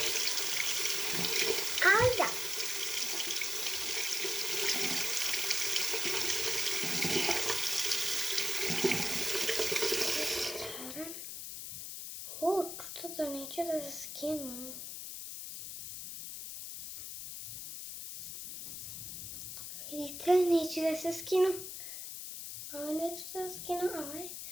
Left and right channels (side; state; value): left; noise; hiss, 8 dB below the sound